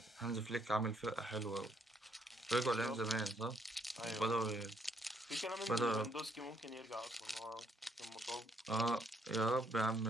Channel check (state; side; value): normal; both; correlation 0.71